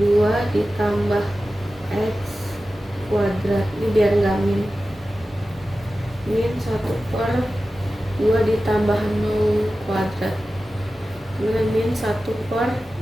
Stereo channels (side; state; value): both; normal; correlation 0.94